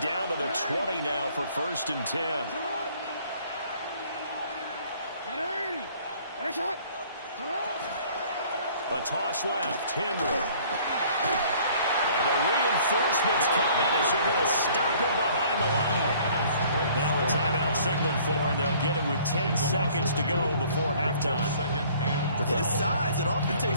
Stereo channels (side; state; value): both; inverted; correlation -0.55